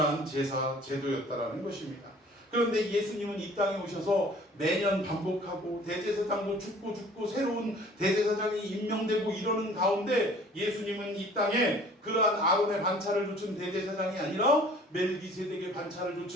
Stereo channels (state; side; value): normal; both; correlation 0.51